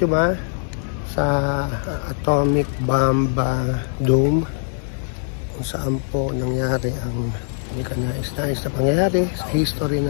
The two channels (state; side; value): silent; right; digital silence